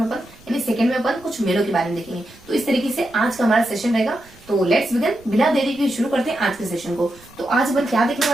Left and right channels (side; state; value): right; noise; rumble, 25 dB below the sound